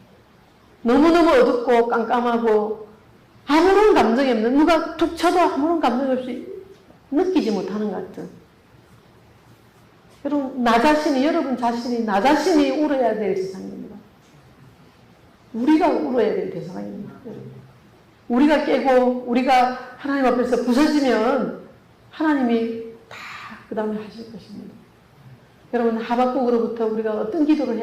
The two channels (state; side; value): identical; both; correlation 1.00